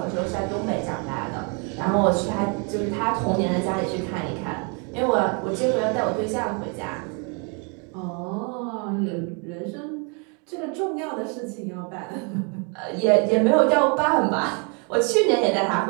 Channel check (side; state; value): left; quieter; 35.8 dB